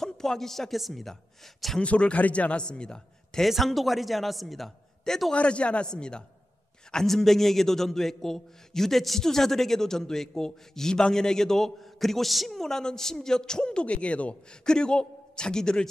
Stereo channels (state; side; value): normal; both; correlation 0.94